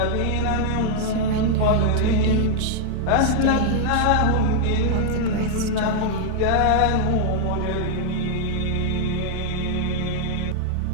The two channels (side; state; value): both; different; correlation 0.00